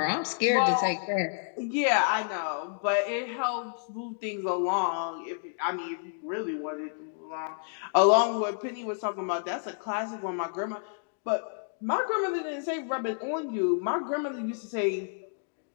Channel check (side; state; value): right; silent; digital silence